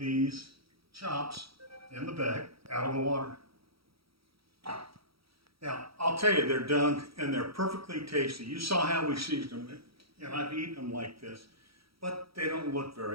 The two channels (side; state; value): left; late; 0.75 ms